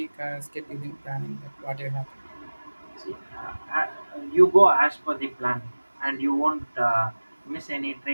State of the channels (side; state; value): both; inverted; correlation -1.00